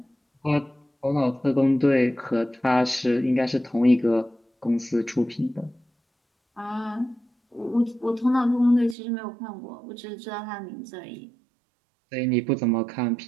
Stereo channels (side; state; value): left; drops out; at 9.0 s